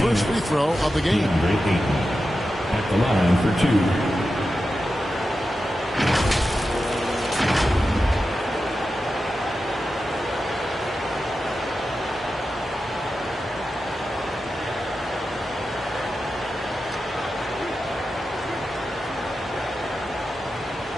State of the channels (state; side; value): normal; both; correlation 0.91